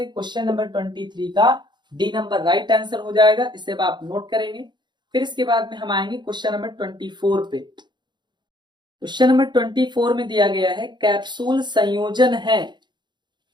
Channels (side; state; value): left; late; 0.22 ms